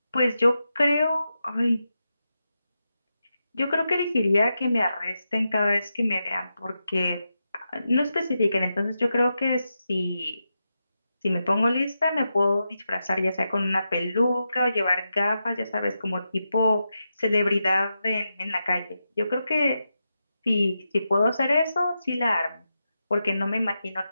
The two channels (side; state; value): both; inverted; correlation -0.88